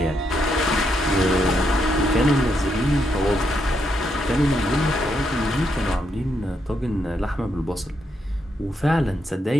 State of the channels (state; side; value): normal; both; correlation 0.79